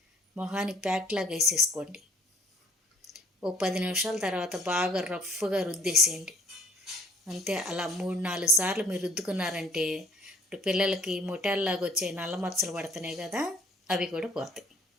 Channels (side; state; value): both; normal; correlation 0.57